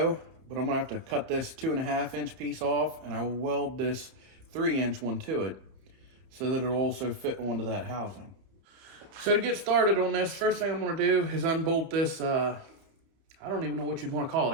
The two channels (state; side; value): late; left; 30 ms